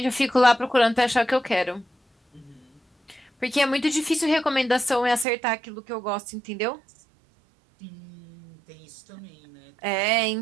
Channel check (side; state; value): left; drops out; at 5.2 s